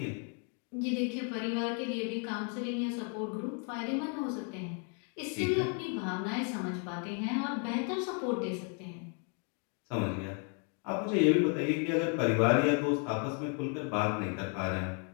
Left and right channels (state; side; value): quieter; right; 39.2 dB